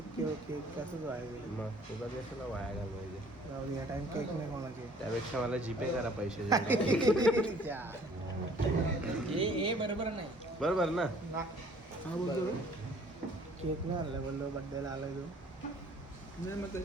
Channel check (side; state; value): both; normal; correlation 0.55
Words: केक कसंच वाया गेले. मग तुला कशाला वाया घालवायचे? राहून या टाइम केक नाही कोणाचे. त्यापेक्षा मला जीपे करा पैसे. हे बरोबर नाही. बरोबर ना. हा बोलतो केक नाही आणला बोललो बड्डेला आलाय तो. नाही मग